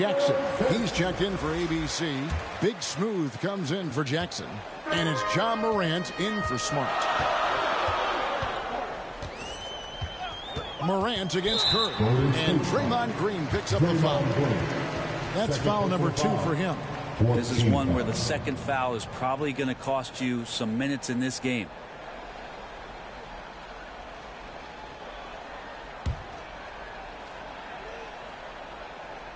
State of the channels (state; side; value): identical; both; correlation 1.00